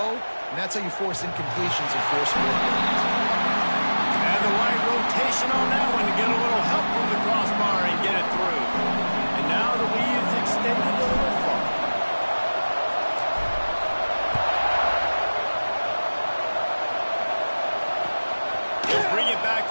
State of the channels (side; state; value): both; inverted; correlation -1.00